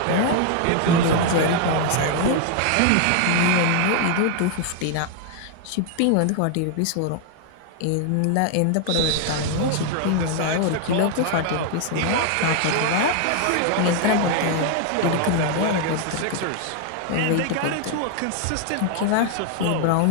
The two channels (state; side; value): different; both; correlation 0.00